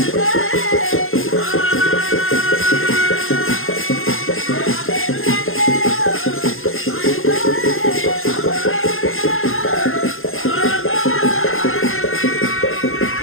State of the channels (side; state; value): right; late; 0.60 ms